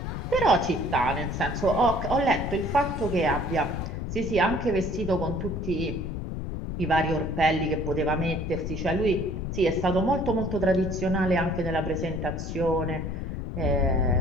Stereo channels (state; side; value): noise; left; rumble, 4 dB below the sound